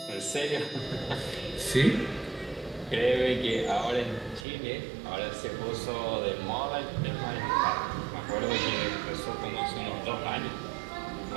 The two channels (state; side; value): drops out; left; at 4.5 s